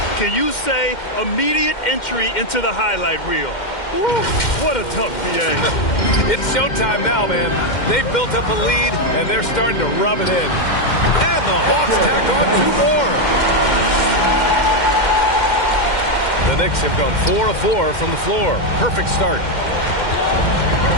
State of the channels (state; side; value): late; right; 2.1 ms